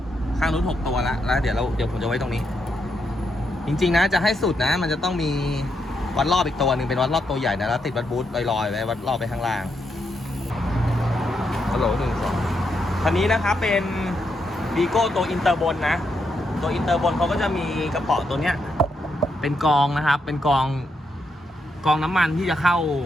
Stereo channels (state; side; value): normal; both; correlation 0.81